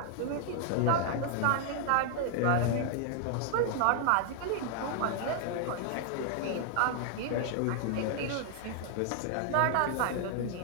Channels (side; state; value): both; different; correlation 0.00